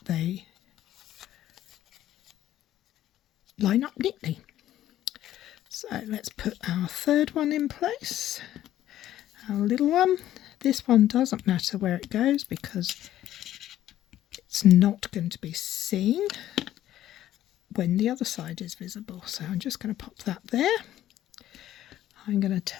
they line up neatly. So let's put our third one in place, our little one. This one doesn't matter where it goes because it's not going to be seen when the other side is visible. So I'm just going to pop that there. I'm going to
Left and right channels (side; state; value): right; quieter; 12.8 dB